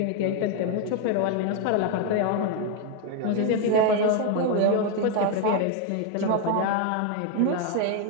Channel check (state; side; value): different; both; correlation 0.01